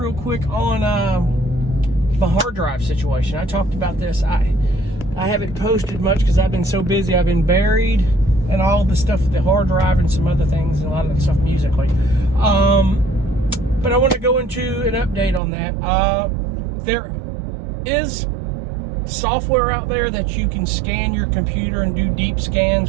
quick on my hard drive situation. I talked about this. I haven't posted much because I've been so busy. I've been buried in all the stuff with the hard drive and some other things and a lot of the stuff musically. But I want to go into an update on that. There is software out there that you can scan your computer and do deep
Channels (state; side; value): drops out; left; at 15.4 s